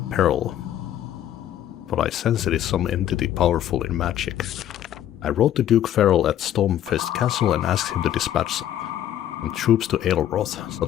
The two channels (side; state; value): right; quieter; 11.5 dB